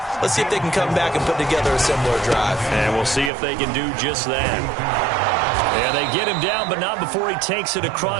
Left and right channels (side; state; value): left; drops out; at 3.3 s